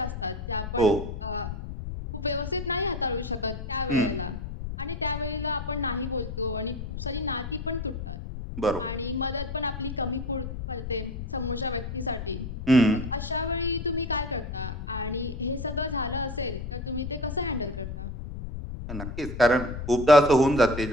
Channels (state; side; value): noise; left; rumble, 7 dB below the sound